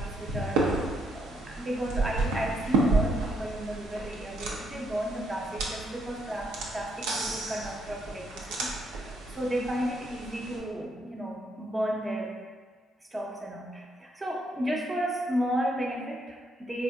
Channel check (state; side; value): normal; both; correlation 0.73